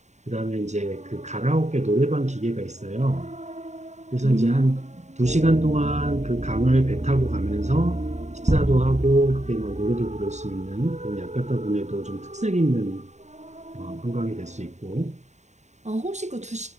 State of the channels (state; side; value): late; left; 0.34 ms